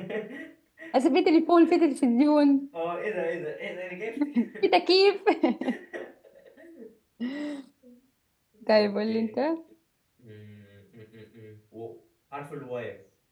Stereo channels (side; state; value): both; identical; correlation 1.00